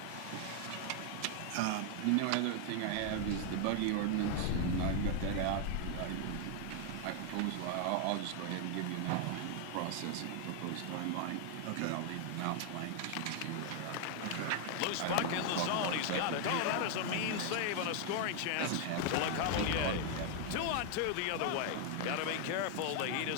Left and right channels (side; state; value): both; different; correlation 0.00